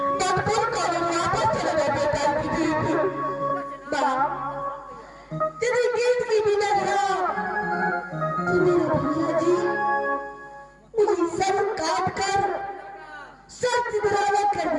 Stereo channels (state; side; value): identical; both; correlation 1.00